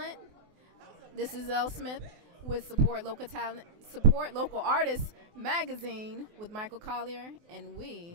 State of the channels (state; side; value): late; left; 24 ms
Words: This is Elle Smith with Support Local Talent, Support Local Artists magazine with Michael Colyar, and